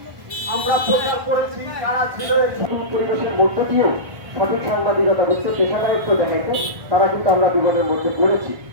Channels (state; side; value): late; left; 1.5 ms